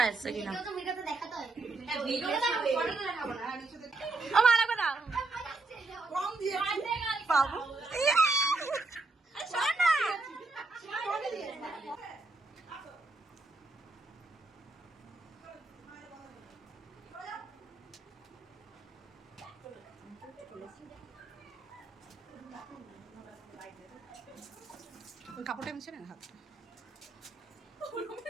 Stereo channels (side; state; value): left; quieter; 3.4 dB